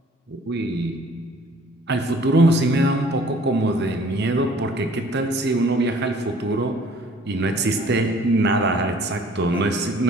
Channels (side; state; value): both; normal; correlation 0.54